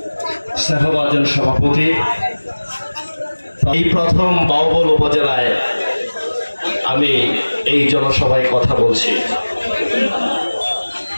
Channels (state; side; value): inverted; both; correlation -1.00